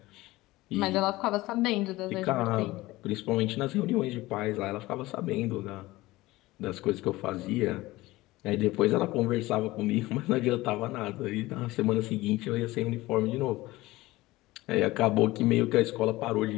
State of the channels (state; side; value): quieter; right; 18.9 dB